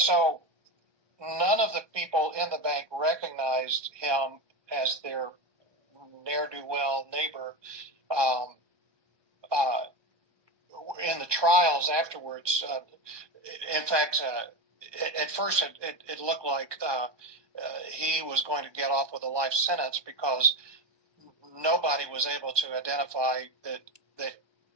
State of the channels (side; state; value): left; late; 1.2 ms